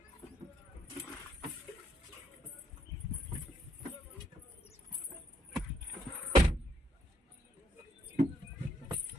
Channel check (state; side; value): normal; both; correlation 0.72